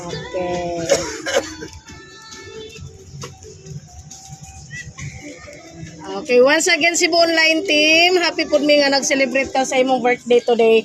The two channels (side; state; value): both; identical; correlation 1.00